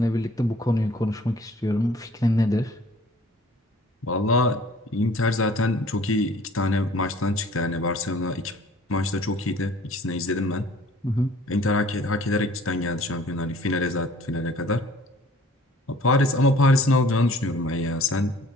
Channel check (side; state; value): both; normal; correlation 0.53